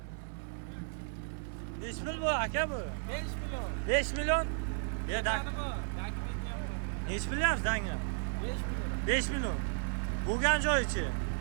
5 pul bu aka bu. 5 million. 5 million? Ya da. Nechi bilyapsiz danga? 5 million. Bo'lgan joyichi.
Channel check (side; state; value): left; silent; 55 dB below the other